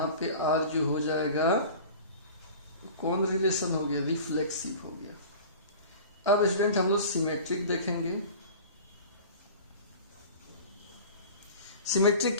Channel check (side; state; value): both; inverted; correlation -0.40